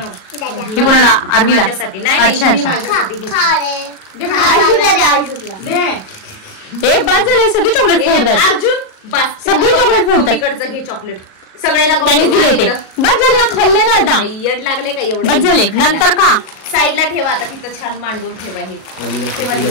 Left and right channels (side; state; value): right; late; 37 ms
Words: ही कोणाला? आरवीला. माझ्यासाठी नाही. अच्छा अच्छा. माझ्यासाठी घेतली. दे. हे बस झाले सगळे चॉकलेट फोडतात. अर्जुन बस सगळे चॉकलेट फोडतात. मम्मीकडचं घे चॉकलेट. सगळ्यांना त्यांनीच दिले ते. बस झाले ना, खाल्ले ना आता. येड लागले का एवढे? बस झाले. नंतर का साईडला ठेवा आता, तिथं छान मांडून ठेवा. हे